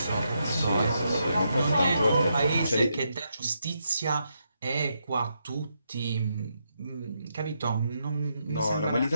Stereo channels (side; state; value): both; inverted; correlation -0.81